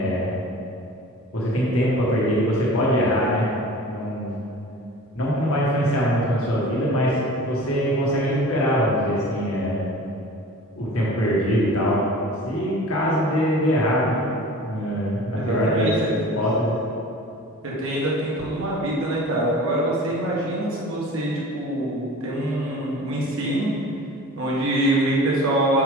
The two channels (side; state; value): both; normal; correlation 0.41